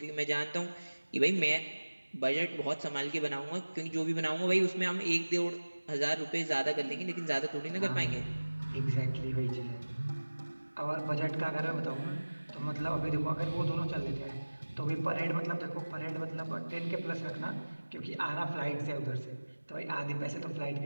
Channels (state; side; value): inverted; both; correlation -1.00